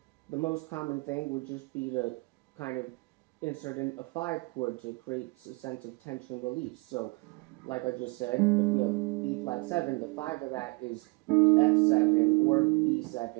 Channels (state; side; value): quieter; left; 27.3 dB